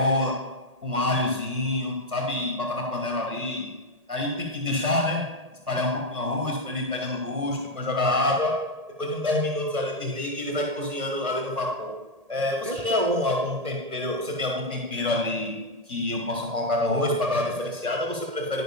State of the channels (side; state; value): left; late; 1.8 ms